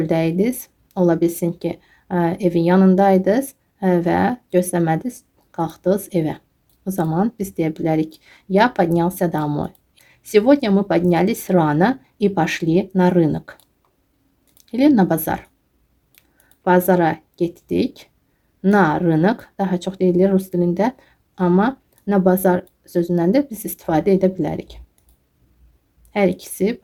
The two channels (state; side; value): identical; both; correlation 1.00